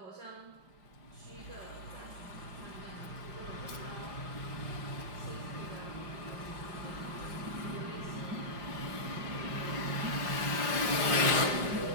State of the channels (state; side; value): late; left; 5.7 ms